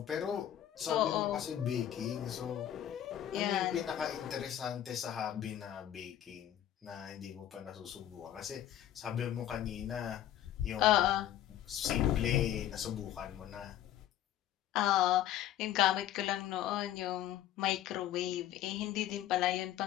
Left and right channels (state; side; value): quieter; right; 11.6 dB